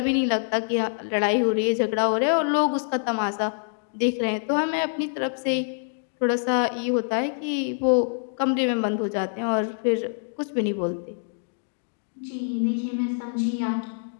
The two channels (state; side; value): silent; right; digital silence